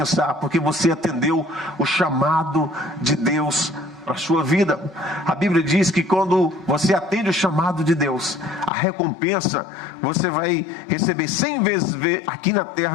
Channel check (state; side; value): drops out; right; at 8.7 s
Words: porque você atendeu o chamado de Deus para a sua vida. A Bíblia diz que quando você atende o chamado de Deus, a recompensa você vai receber 100 vezes aqui na